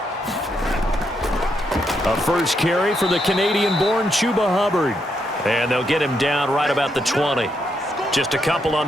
A first carry for the Canadian-born Chuba Hubbard. And they'll get him down right about the 20. Just a couple on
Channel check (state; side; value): normal; both; correlation 0.79